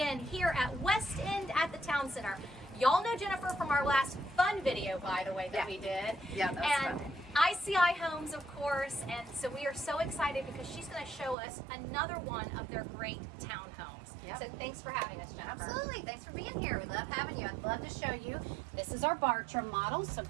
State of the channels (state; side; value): drops out; left; at 11.4 s